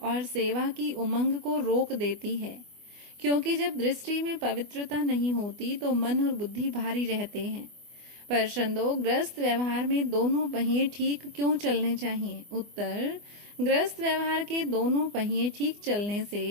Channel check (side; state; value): left; late; 24 ms